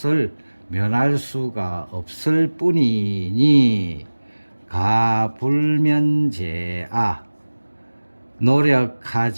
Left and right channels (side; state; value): both; inverted; correlation -1.00